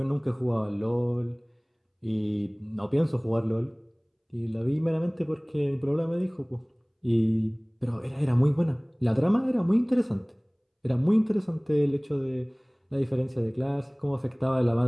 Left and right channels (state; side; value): identical; both; correlation 1.00